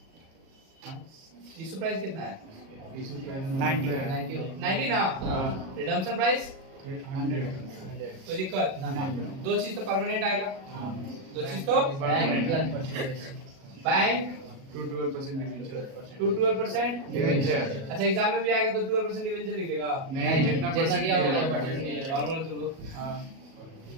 इशू प्राइस कितना है? इशू प्राइस 90, 90 ना। रिडम्पशन प्राइस 100, कोई दिक्कत? नहीं। दो चीज तो परमानेंट आएगा, दो चीज तो बैंक 12% डिवेंचर, 12% डिवेंचर। अच्छा एग्जाम में भी आएगा तो 12% डिवेंचर लिख देगा। नहीं, जितना जितना दिया होगा, परसेंट नॉर्मल तुम लोग हाँ,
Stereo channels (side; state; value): left; late; 37 ms